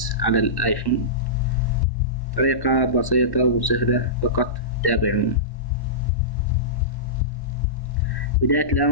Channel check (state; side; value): late; right; 1.1 ms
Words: على الآيفون. طريقة بسيطة وسهلة، فقط تابعونا. بداية